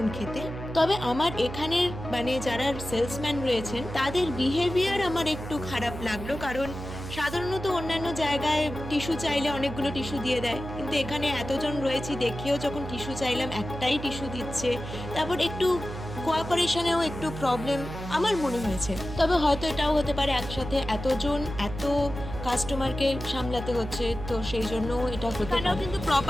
খেতে। তবে আমার এখানের মানে যারা সেলসম্যান রয়েছেন তাদের বিহেভিয়ার আমার একটু খারাপ লাগলো, কারণ সাধারণত অন্যান্য জায়গায় টিস্যু চাইলে অনেকগুলো টিস্যু দিয়ে দেয়, কিন্তু এখানে এতজন রয়েছি দেখেও যখন টিস্যু চাইলাম একটাই টিস্যু দিচ্ছে। তারপর একটু কোঅপারেশনেও একটু প্রবলেম আমার মনে হয়েছে। তবে হয়তো এটাও হতে পারে একসাথে এতজন এত কাস্টমারকে সামলাতে হচ্ছে, তো সেই জন্য এটা হতে পারে। কিন্তু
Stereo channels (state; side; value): noise; right; hum, 9 dB below the sound